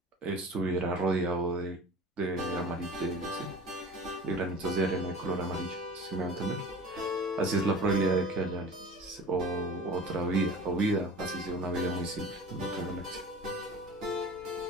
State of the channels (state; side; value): normal; both; correlation 0.40